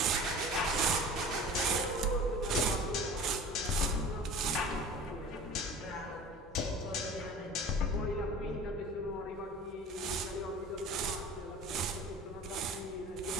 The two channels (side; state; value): both; normal; correlation 0.40